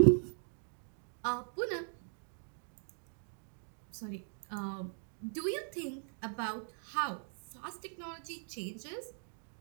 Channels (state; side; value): silent; left; digital silence